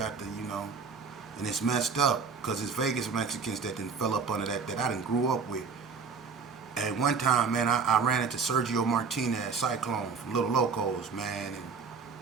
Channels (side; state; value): left; quieter; 5.4 dB